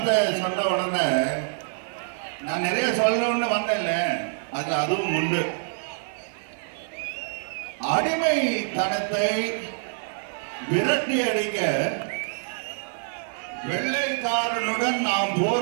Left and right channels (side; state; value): left; silent; 61 dB below the other